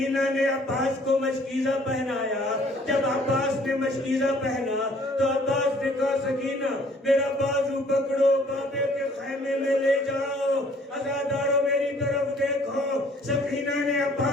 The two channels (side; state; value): both; normal; correlation 0.58